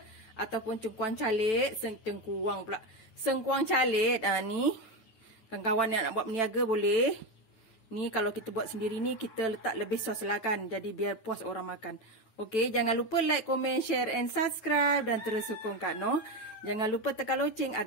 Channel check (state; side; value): late; right; 9.1 ms